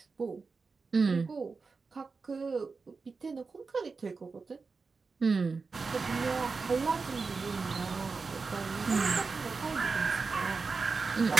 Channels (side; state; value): left; quieter; 4.5 dB